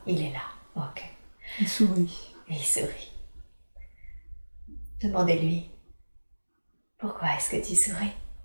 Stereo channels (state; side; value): inverted; both; correlation -1.00